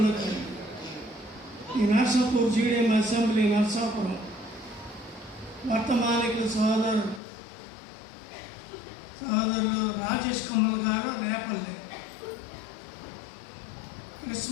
ఈ నర్సాపూర్ జీడిఎం అసెంబ్లీ నర్సాపురం వర్తమానికులు సోదరులు రాజేష్ కమల్ గారు రేపల్లె.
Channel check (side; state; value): right; drops out; at 7.2 s